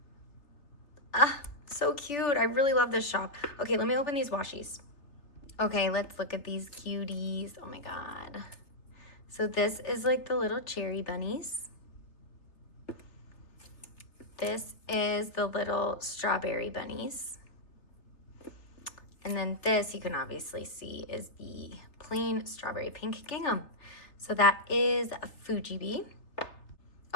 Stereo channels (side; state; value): right; late; 3.3 ms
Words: Ah, so cute. I really love this shop. Okay, let me open these washies. Okay, let's look at these cuties. Oh my God. So this is like the little cherry bunnies. This is the little strawberry bunnies. And then this, you can obviously see, is the plain strawberry pink gingham. So that is a Fuji Bee.